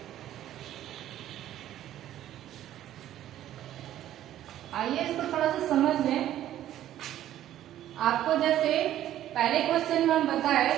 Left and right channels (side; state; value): left; quieter; 12.4 dB